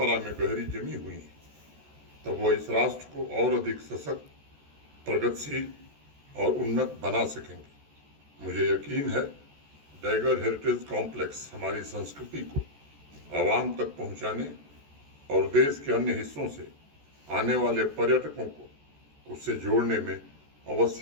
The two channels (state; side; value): late; left; 14 ms